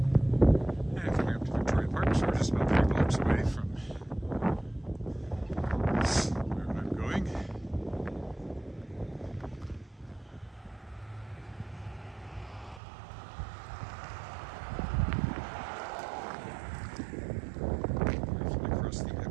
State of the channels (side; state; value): left; drops out; at 12.8 s